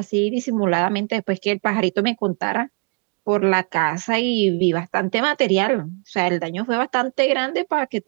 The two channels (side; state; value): left; quieter; 36.3 dB